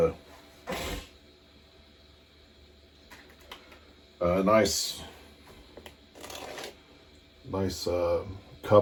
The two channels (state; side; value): identical; both; correlation 1.00